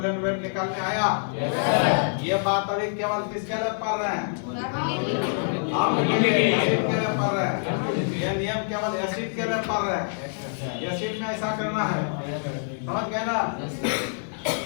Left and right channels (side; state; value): right; silent; 58 dB below the other